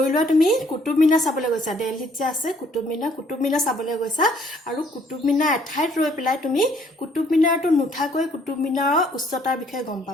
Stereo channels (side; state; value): both; normal; correlation 0.63